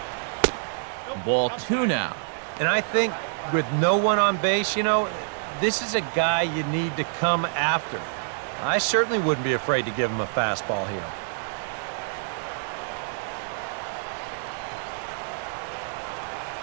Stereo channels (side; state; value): left; silent; digital silence